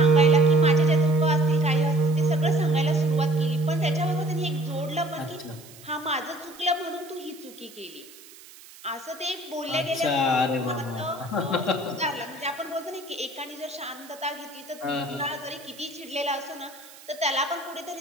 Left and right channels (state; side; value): noise; right; hiss, 20 dB below the sound